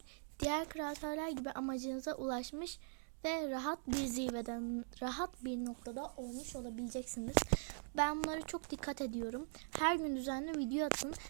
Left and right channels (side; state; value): left; silent; digital silence